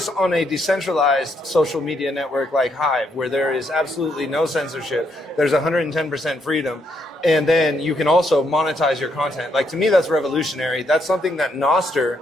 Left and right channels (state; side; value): normal; both; correlation 0.75